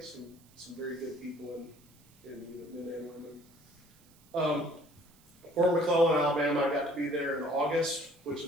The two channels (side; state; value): right; noise; hiss, 28 dB below the sound